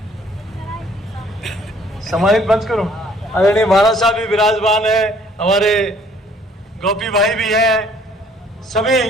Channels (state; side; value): normal; both; correlation 0.59